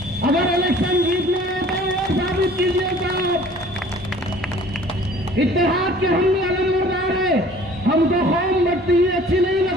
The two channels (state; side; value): normal; both; correlation 0.50